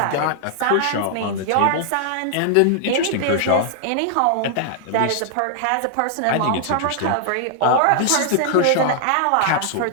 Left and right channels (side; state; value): both; different; correlation -0.01